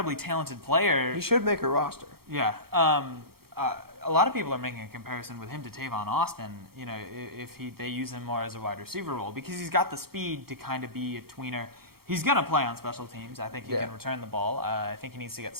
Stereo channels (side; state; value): left; late; 0.94 ms